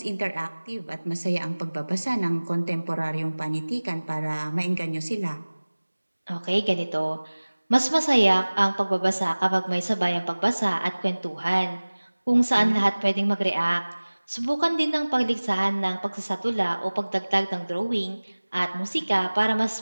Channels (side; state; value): both; inverted; correlation -1.00